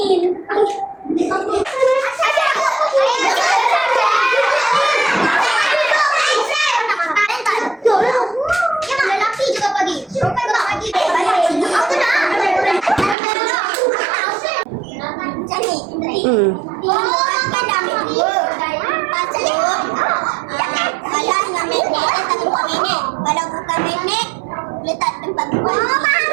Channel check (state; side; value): drops out; left; at 13.2 s